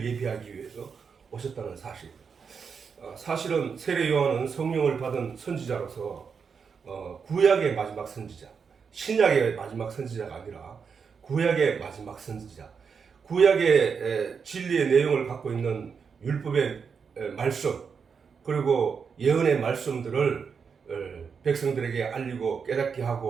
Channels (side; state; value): left; quieter; 6.0 dB